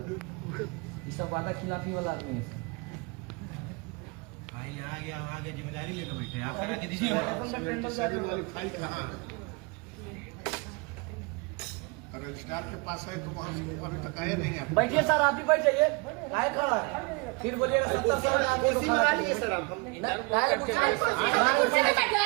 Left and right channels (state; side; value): quieter; left; 28.7 dB